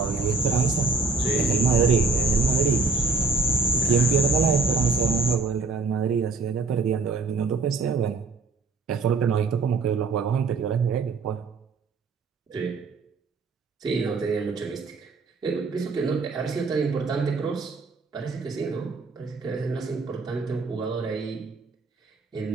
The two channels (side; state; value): left; quieter; 4.2 dB